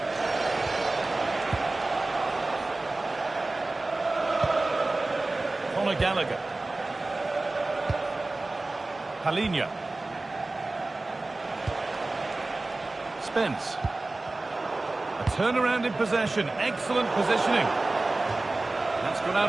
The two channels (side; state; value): left; quieter; 3.1 dB